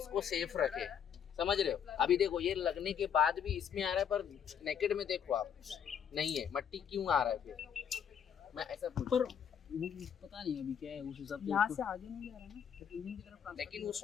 सेफ रखे, समझ रहे हो। अभी देखो ये लगने के बाद भी इसमें आ रहा है, पर नेकेड में देखो आप नहीं है, मट्टी क्यों आ रहा है फिर? मैं ऐसा पूछ, पर पता नहीं अभी क्या है उस हिसाब से यहाँ उसको- से आगे नहीं जा रहा ना, इंजन की तरफ लेकिन वो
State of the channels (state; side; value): quieter; right; 8.2 dB